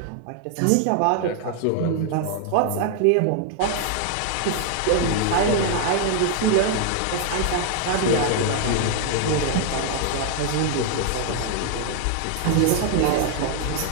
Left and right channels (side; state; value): both; different; correlation 0.00